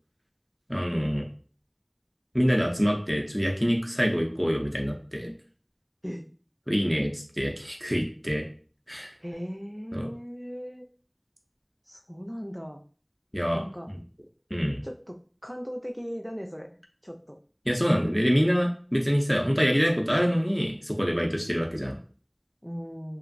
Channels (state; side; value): identical; both; correlation 1.00